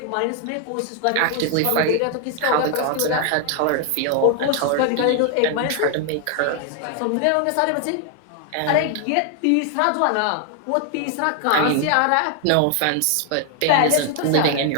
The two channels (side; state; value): both; different; correlation 0.00